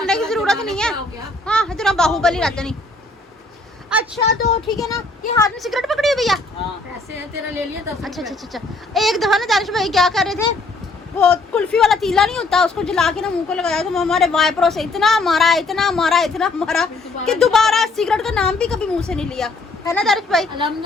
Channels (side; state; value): right; quieter; 3.2 dB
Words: की जरूरत नहीं है। हो गया। हाँ इतना बाहुबली रहता नहीं। अच्छा तो ठीक है ना, ये हाथ में सिगरेट पकड़ी हुई भैया। पैसे है तेरा, ले लिया 10 अच्छा अच्छा अच्छा अच्छा। एक दफा ना दानिश भाई क्या कर रहे थे, वो कुल्फी वाला तीला नहीं होता, उसको जला के ना मुंह को लगाया, तो हमारे वाइपरों से इतना मारा इतना मारा इतना मारा कि दोबारा सिगरेट का नाम भी कभी मुंह से नहीं लिया, है ना दानिश भाई?